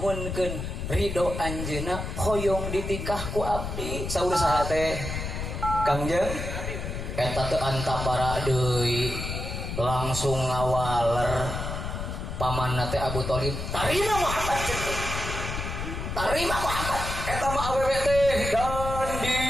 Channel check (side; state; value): left; noise; rumble, 5 dB below the sound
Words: ridho anjeunna hoyong ditikah ku abdi saur saha teh Kangjeng eta teu antapara deui langsung ngawaler pamanna teh Abu Thalib tarima Muhammad tarima Muhammad eta mah awewe teh dan